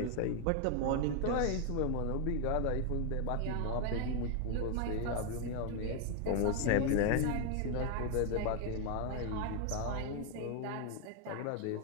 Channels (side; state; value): both; different; correlation 0.00